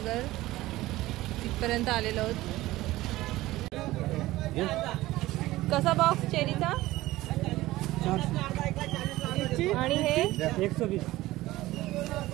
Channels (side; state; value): left; quieter; 17.3 dB